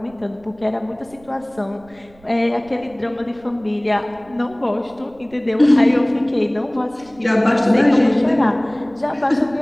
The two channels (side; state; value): right; noise; rumble, 27 dB below the sound